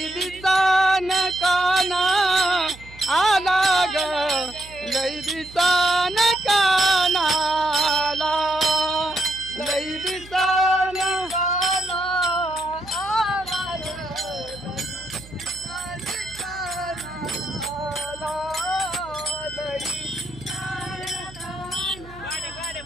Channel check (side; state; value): right; noise; hum, 19 dB below the sound